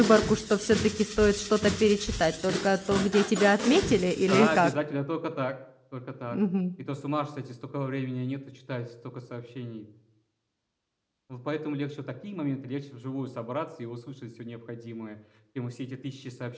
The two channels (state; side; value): identical; both; correlation 1.00